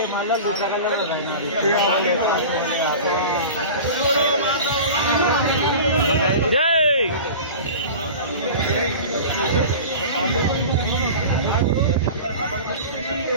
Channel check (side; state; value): both; inverted; correlation -0.35